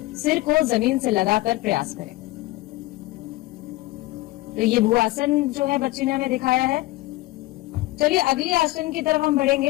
सिर को जमीन से लगाकर प्रयास करें। तो ये भुआसन जो है बच्ची ने हमें दिखाया है। चलिए अगले आसन की तरफ हम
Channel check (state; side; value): quieter; right; 18.6 dB